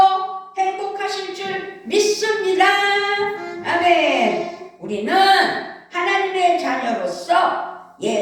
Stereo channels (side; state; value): both; identical; correlation 1.00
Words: 행복하실 줄 믿습니다. 아멘. 우리는 하나님의 자녀로서